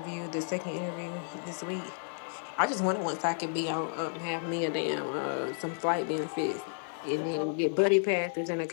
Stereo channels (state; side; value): silent; right; digital silence